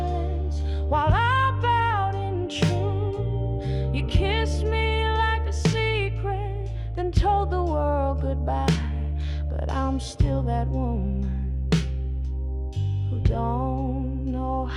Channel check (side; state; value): both; identical; correlation 1.00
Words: while I bowed in truth. You kissed me like a secret, then told the world goodbye. But I'm still that woman who don't know